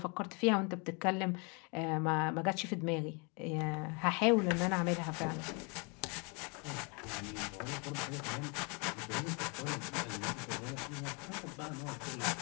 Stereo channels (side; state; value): right; quieter; 32.8 dB